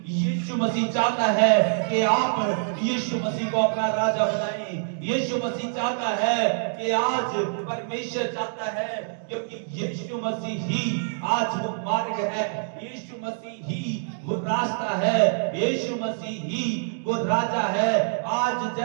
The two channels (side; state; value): left; silent; digital silence